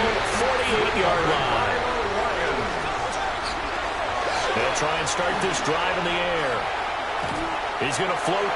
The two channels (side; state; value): both; identical; correlation 1.00